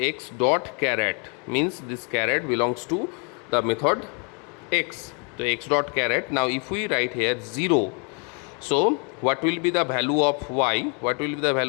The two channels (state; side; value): quieter; right; 36.9 dB